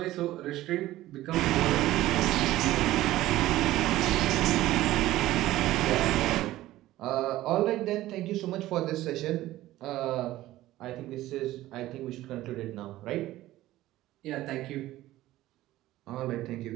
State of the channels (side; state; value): left; quieter; 15.7 dB